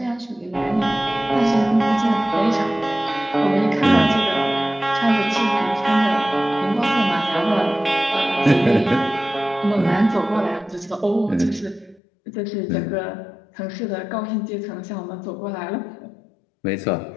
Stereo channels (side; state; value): right; drops out; at 12.0 s